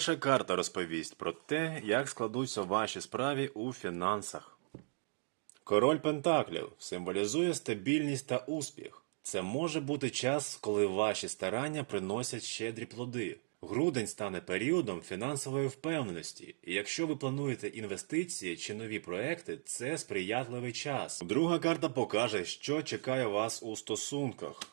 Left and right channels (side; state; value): left; silent; digital silence